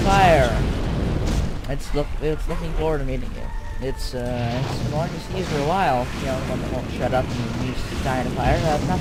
fire. It's looking forward to meeting you. It's been wanting to see you for a while. You know, the one that won't shut up and needs to die in a fire.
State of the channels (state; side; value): identical; both; correlation 1.00